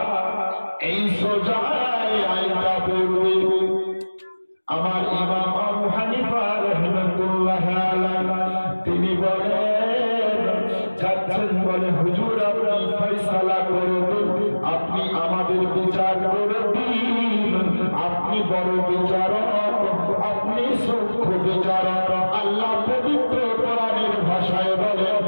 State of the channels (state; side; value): inverted; both; correlation -1.00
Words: এই সোজা আইনটা পড়বে। আমার ইমাম আবু হানিফা রাহমাতুল্লাহ আলাইহি, তিনি বলেন, যাচ্ছেন, বলে হুজুর আপনি ফয়সালা করে দিন, আপনি আমাদের বিচার করে দিন, আপনি বড় বিচারক, আপনি সূক্ষ্ম বিচারক। আল্লাহ পবিত্র কোরআনের ভাষায় বলে,